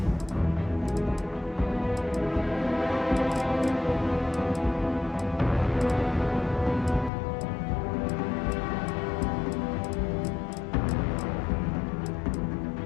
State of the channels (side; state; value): right; drops out; at 7.1 s